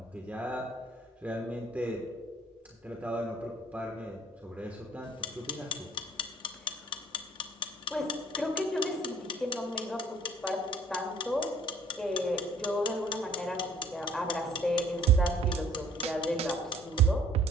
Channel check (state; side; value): normal; both; correlation 0.58